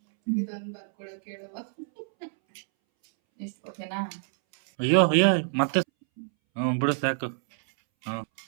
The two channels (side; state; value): left; silent; 60 dB below the other